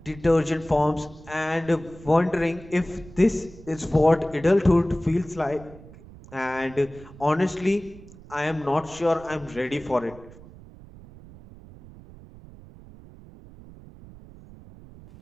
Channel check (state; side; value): noise; right; rumble, 19 dB below the sound